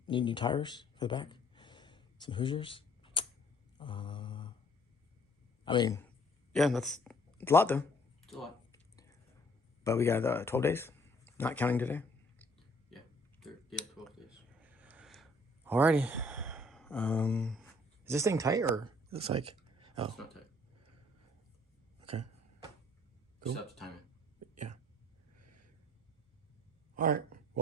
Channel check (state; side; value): normal; both; correlation 0.60